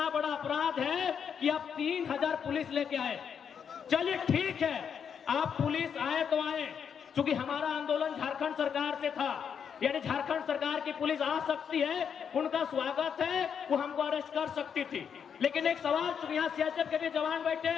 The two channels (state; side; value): quieter; right; 7.4 dB